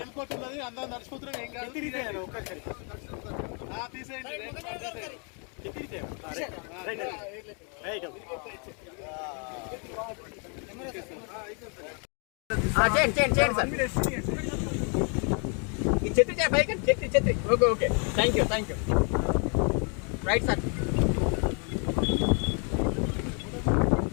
కోట్ ఉన్నది, అందరూ నడిచిపోతున్నాం. ఏం కాదు, చెత్తిరిగితే ఒక్కసారి తీసేయండి. చెత్తిరిగితే రైట్ చేయండి సార్. ఈ చెత్తి పైకి చెత్తి. Okay thank you right sir.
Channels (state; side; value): quieter; right; 38.1 dB